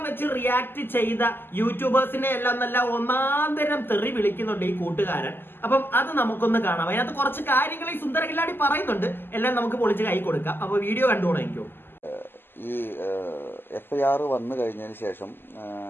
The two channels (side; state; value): right; late; 0.099 ms